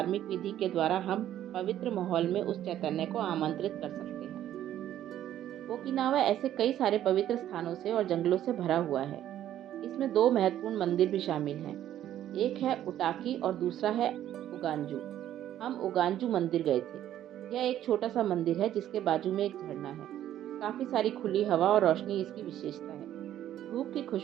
विधि के द्वारा हम पवित्र माहौल में उस चैतन्य को आमंत्रित कर सकते हैं। ओकिनावा ऐसे कई सारे पवित्र स्थानों से और जंगलों से भरा हुआ है। इसमें 2 महत्वपूर्ण मंदिर भी शामिल हैं। एक है उटाकी और दूसरा है उगांजू। हम उगांजू मंदिर गए थे। यह एक छोटा सा मंदिर है जिसके बाजू में एक झरना है। काफ़ी सारी खुली हवा और रोशनी इसकी विशेषता है। धूप की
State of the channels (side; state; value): left; quieter; 11.8 dB